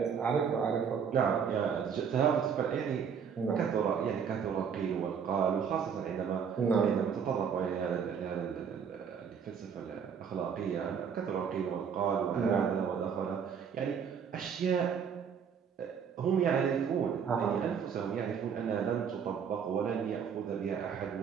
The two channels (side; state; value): left; quieter; 7.1 dB